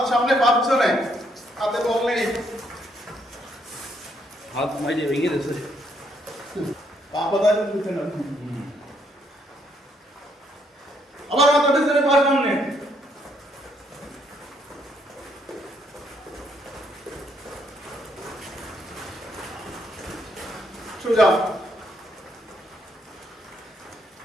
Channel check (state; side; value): normal; both; correlation 0.72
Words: সামনে পা পিছনে, হাতে বল নেই, হাত মাইজে ভেঙে দিয়েছে। পা কোথায় উঠে না। আবার হাত পিছনে পা সামনে। সোজা।